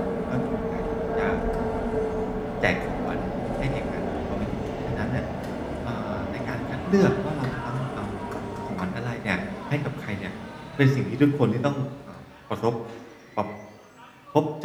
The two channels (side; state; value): both; identical; correlation 1.00